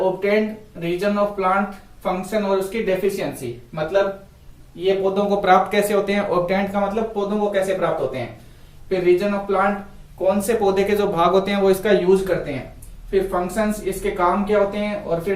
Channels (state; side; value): identical; both; correlation 1.00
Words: reason of plant function और उसकी डेफिशिएंसी, मतलब ये पौधों को प्राप्त कैसे होते हैं। ऑब्टेन्ड का मतलब पौधों को कैसे प्राप्त होते हैं। फिर रीजन ऑफ प्लांट, कौन से पौधे के जो भाग होते हैं वो इसका यूज करते हैं। फिर फंक्शंस, इसके काम क्या होते हैं। और